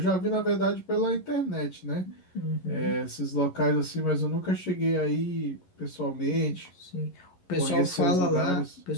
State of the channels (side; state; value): right; late; 11 ms